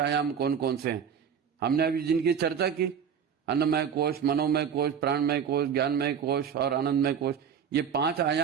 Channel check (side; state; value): left; quieter; 7.6 dB